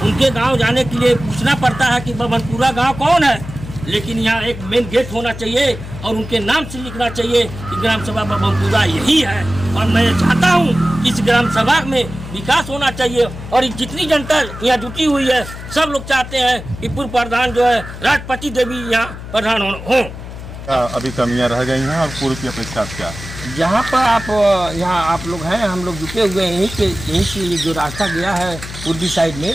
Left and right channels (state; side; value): noise; left; hum, 11 dB below the sound